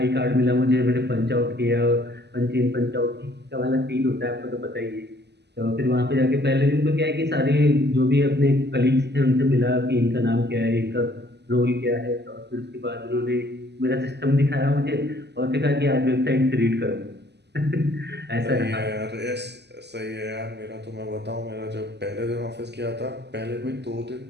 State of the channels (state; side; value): late; left; 0.50 ms